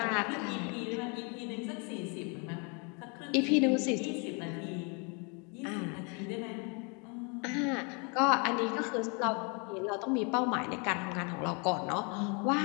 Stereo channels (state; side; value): quieter; right; 34.0 dB